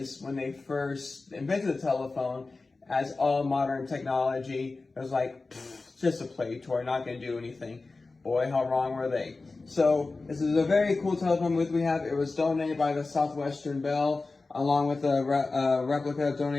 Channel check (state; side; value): quieter; right; 3.6 dB